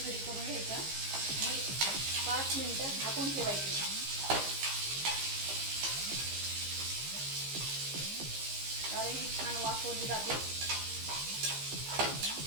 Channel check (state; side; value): late; left; 15 ms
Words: करून घ्यायचं आणि 5 मिनिटं झाकून ठेवायचे। कारण ही छान वाफवली जाते।